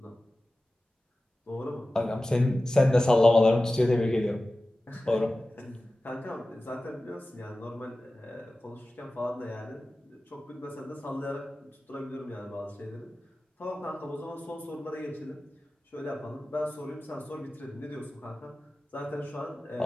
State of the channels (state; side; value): normal; both; correlation 0.96